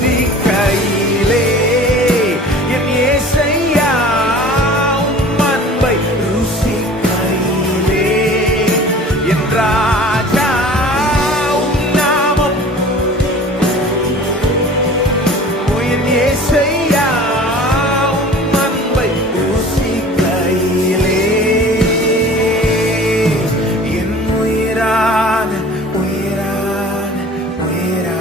என் இயேசையா, உம் அன்பை ருசிக்கையிலே என் ராஜா. உன்னாமும் என் இயேசையா, உம் அன்பை ருசிக்கையிலே என் உயிரான உயிரான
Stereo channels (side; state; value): both; normal; correlation 0.44